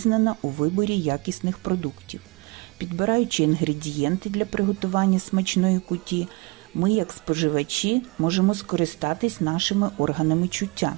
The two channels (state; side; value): quieter; left; 26.1 dB